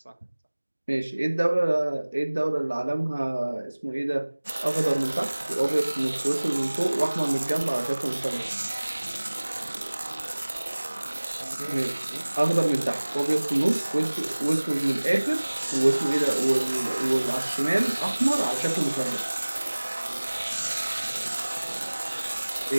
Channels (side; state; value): both; inverted; correlation -1.00